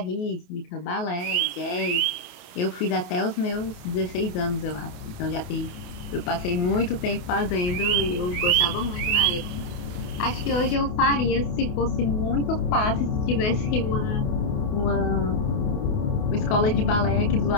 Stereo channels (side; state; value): right; late; 28 ms